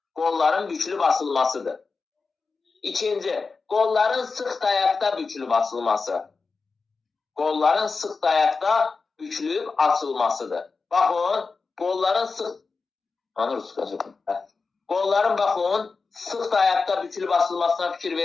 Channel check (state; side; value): quieter; right; 4.4 dB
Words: qolların bükülü basılmasıdır. İkinci, qolların sıx dayaqda bükülü basılması. Qolların sıx dayaqda bükülüb açılmasıdır. Baxın, qolların sıx dayaqda bükülüb basılmasına fikir